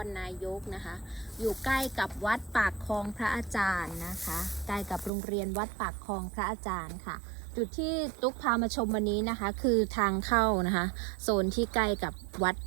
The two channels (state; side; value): drops out; left; at 5.1 s